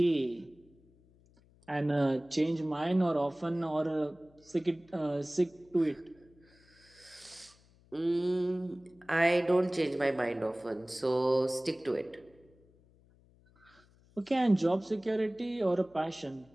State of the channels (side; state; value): left; noise; hum, 29 dB below the sound